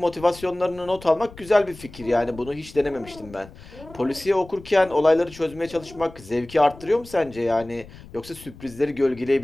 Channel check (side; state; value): left; noise; rumble, 19 dB below the sound